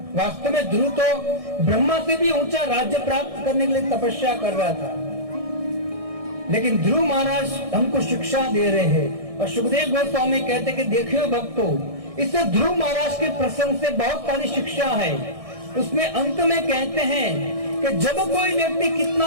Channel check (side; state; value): left; late; 1.6 ms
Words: वास्तव में ध्रुव तो ब्रह्मा से भी ऊंचा राज्य प्राप्त करने के लिए तपस्या कर रहा था, लेकिन ध्रुव महाराज हमको शिक्षा दे रहे हैं। और सुखदेव गोस्वामी कहते कि देखियो भक्तों, इससे ध्रुव महाराज के प्रसंग से बहुत सारी शिक्षा है। उसमें अंत में कहते हैं कि जब कोई व्यक्ति,